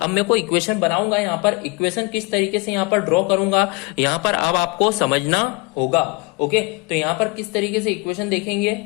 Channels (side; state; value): right; quieter; 27.9 dB